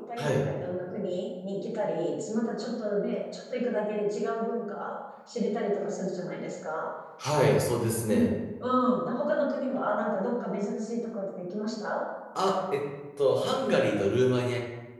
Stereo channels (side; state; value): both; identical; correlation 1.00